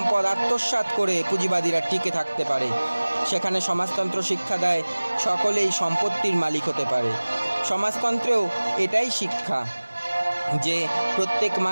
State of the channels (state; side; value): inverted; both; correlation -1.00